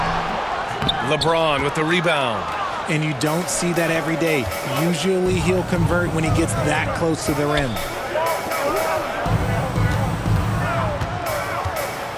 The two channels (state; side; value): identical; both; correlation 1.00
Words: LeBron with the rebound. And you don't see that every day. Usually he'll convert when he gets that close to the rim.